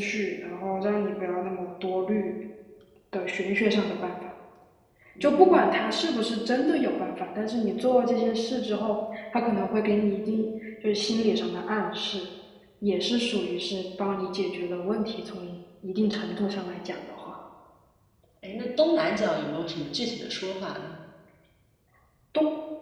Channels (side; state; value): both; identical; correlation 1.00